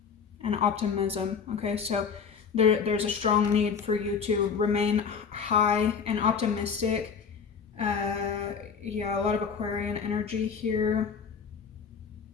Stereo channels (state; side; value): quieter; right; 6.3 dB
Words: and optimism. Okay, so there's a strong need for you to remain high and optimistic. Yeah, a lot of Aquarian energy here.